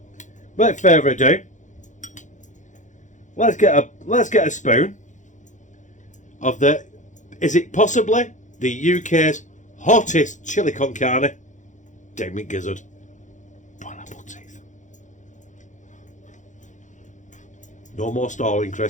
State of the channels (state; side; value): late; right; 0.36 ms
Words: without further ado, let's get a spoon of the, is it possibly the UK's hottest chili con carne? Damn it, gizzard. Pineapple teeth. No more stalling,